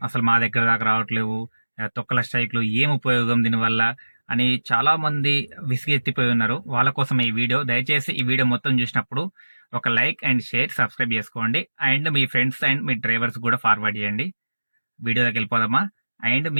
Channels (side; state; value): both; inverted; correlation -1.00